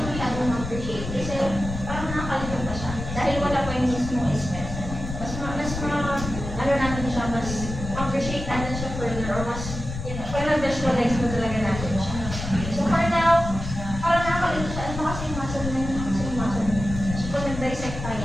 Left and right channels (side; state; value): left; noise; rumble, 7 dB below the sound